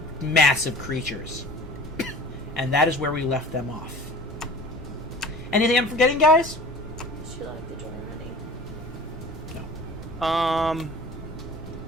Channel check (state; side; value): noise; left; rumble, 17 dB below the sound